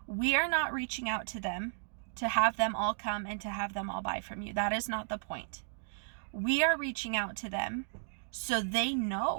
We are not reaching out to them to have them all come and to have them all buy from you. That is not the point. We are reaching out to them so they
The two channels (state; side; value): silent; left; digital silence